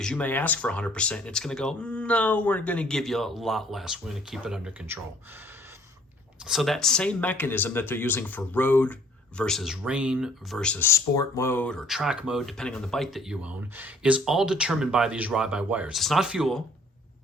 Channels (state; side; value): normal; both; correlation 0.58